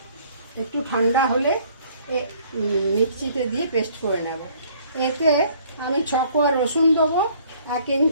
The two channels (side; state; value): both; inverted; correlation -0.59